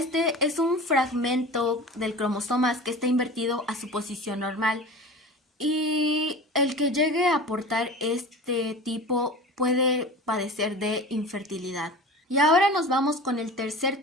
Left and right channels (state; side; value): normal; both; correlation 0.35